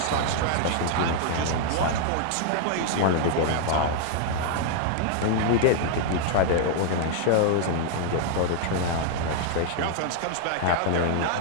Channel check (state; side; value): different; both; correlation 0.00